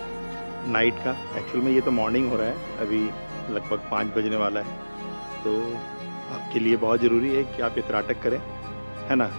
नाइट का। एक्चुअल में ये तो मॉर्निंग हो रहा है, अभी लगभग 5 बजने वाला है। तो आपके लिए बहुत ज़रूरी है कि आप ये त्राटक करें, है ना।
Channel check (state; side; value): inverted; both; correlation -1.00